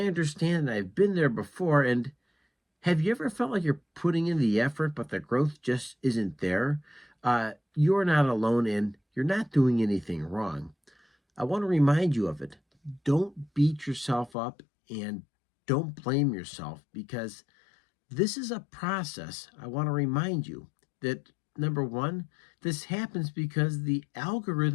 understand. I've been there before. And have you ever felt like you're putting in the effort, but the growth just isn't there? You're not alone and you're not doing anything wrong. I want to remind you of it. Don't beat yourself up and don't blame yourself because this is a process. I want to remind you that number one, this happens because the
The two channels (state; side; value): drops out; right; at 14.3 s